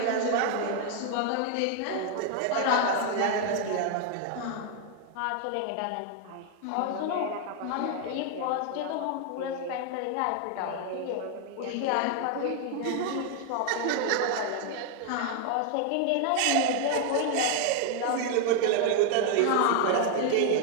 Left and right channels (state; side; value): different; both; correlation 0.00